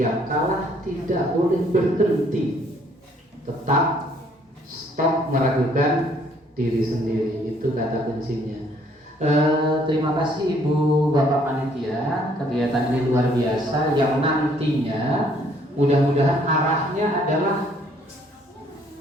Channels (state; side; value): normal; both; correlation 0.63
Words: kalah tidak boleh berhenti. Tetap stop meragukan diri sendiri. Itu kata kuncinya. Terima kasih Ibu Bapak Panitia. Kegiatan ini luar biasa, yang nantinya mudah-mudahan arahnya adalah